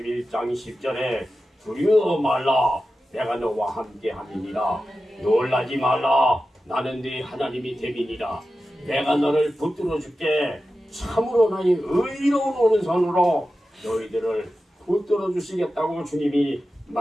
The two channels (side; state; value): both; normal; correlation 0.93